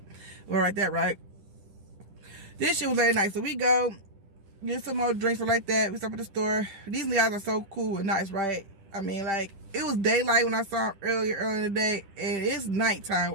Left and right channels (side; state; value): left; late; 10 ms